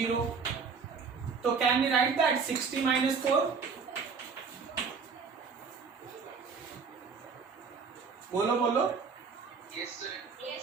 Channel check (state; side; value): quieter; left; 5.4 dB